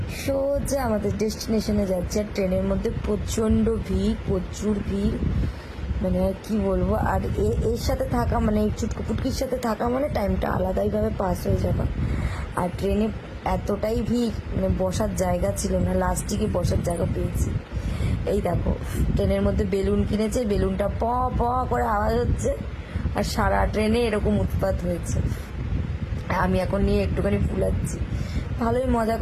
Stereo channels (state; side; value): identical; both; correlation 1.00